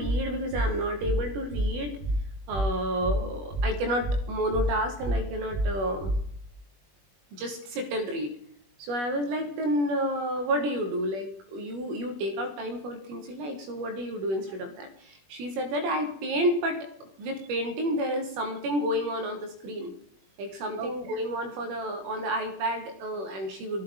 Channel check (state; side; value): late; left; 21 ms